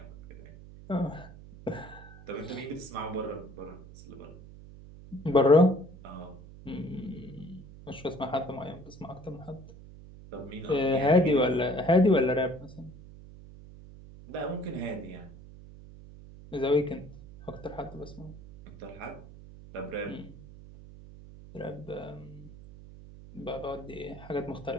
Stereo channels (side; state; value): right; noise; hum, 17 dB below the sound